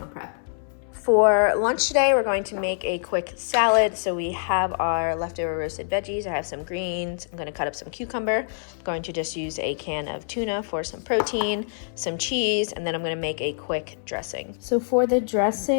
prep. For lunch today, we're going to make a quick salad. So we have our leftover roasted veggies. I have some greens. I'm going to cut up some cucumber. I'm going to just use a can of tuna for some protein, some cheese, and then I'm going to make a quick dressing. So for the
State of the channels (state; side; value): silent; right; 62 dB below the other